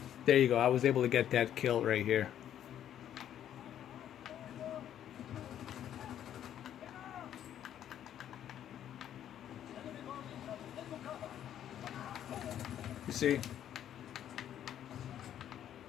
there you go. I was able to get that kill right here. You see?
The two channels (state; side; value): quieter; right; 10.6 dB